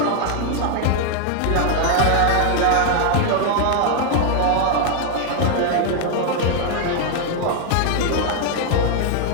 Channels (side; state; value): both; different; correlation 0.00